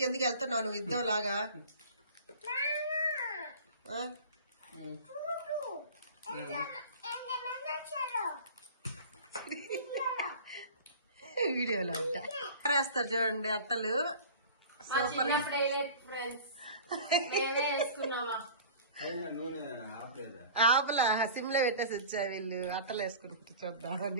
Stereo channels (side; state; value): both; inverted; correlation -0.41